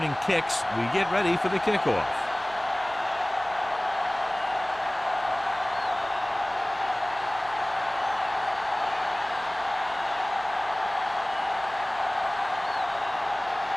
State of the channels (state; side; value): noise; right; hum, 21 dB below the sound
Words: kicks, we get ready for the kickoff.